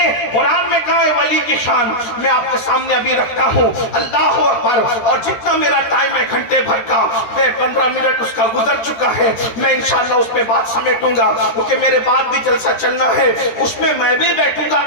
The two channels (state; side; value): late; right; 13 ms